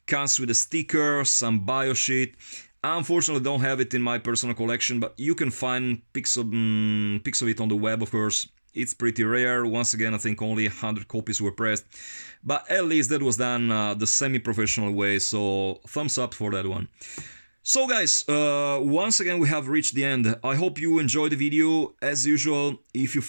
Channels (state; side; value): inverted; both; correlation -1.00